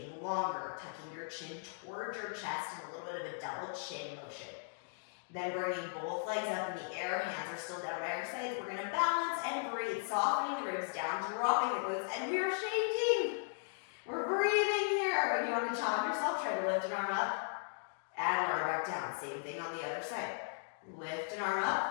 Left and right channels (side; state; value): right; silent; digital silence